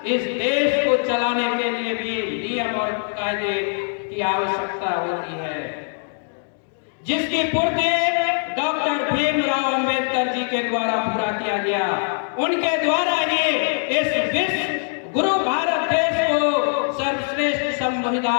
इस देश को चलाने के लिए भी नियम और कायदे की आवश्यकता होती है, जिसकी पूर्ति डॉक्टर भीमराव अंबेडकर जी के द्वारा पूरा किया गया। उनके द्वारा ही इस विश्व गुरु भारत देश को सर्वश्रेष्ठ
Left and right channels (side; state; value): right; silent; 57 dB below the other